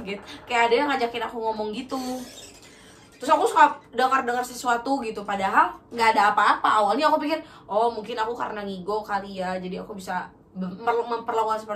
kayak ada yang ngajakin aku ngomong gitu. Terus aku suka dengar sesuatu gitu, padahal nggak ada apa-apa. Awalnya aku pikir mungkin aku karena ngigo kali ya, jadi aku bisa memperlakukan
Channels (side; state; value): both; identical; correlation 1.00